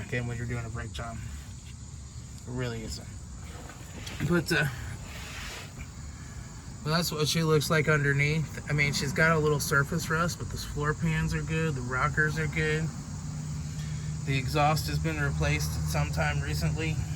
in when you're doing a brake job. It really isn't. But well, that's what she looks like underneath. I mean, she's got a little surface rust, but the floor pans are good, the rockers are good. The exhaust has been replaced sometime recently,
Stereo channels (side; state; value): both; identical; correlation 1.00